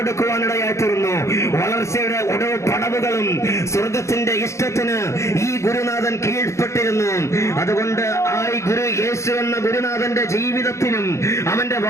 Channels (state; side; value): late; right; 0.14 ms